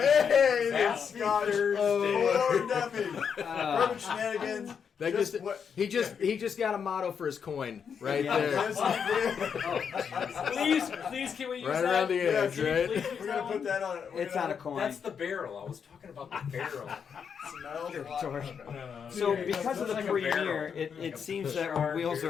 that's Scotch. Oh, Duffy. Perfect shenanigans. He just got a motto for his coin right there. Please, can we use right that? around the edge, right? We're gonna put that on. It's on a coin. That's the barrel. I was talking about the barrel. So because of the premiere, it seems that our wheels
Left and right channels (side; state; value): right; quieter; 6.9 dB